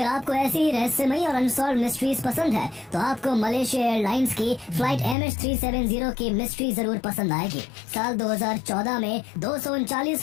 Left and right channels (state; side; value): drops out; right; at 5.2 s